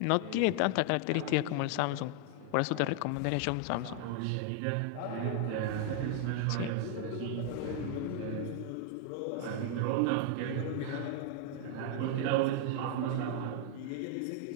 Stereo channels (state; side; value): different; both; correlation 0.00